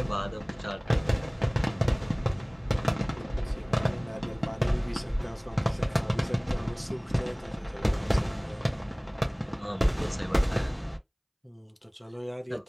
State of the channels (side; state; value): both; identical; correlation 1.00